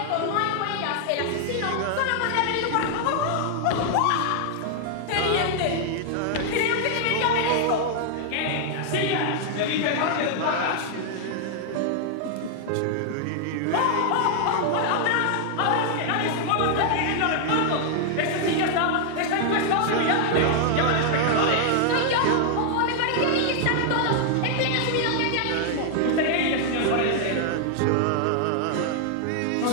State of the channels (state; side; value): different; both; correlation 0.00